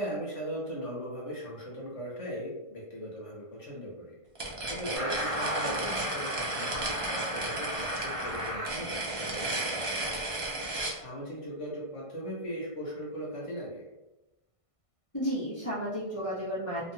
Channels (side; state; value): right; late; 1.5 ms